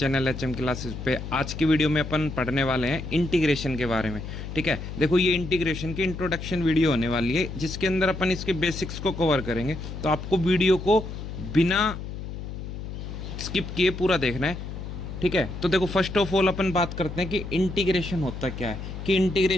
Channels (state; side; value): noise; left; hum, 8 dB below the sound